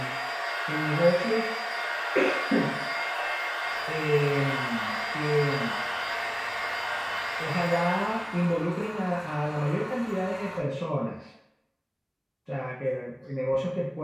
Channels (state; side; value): identical; both; correlation 1.00